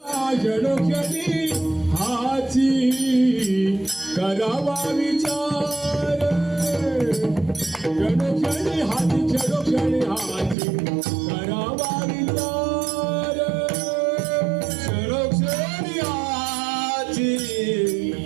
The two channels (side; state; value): left; drops out; at 10.6 s